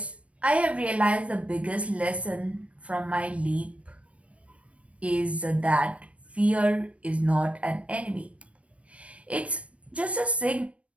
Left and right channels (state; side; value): late; left; 0.063 ms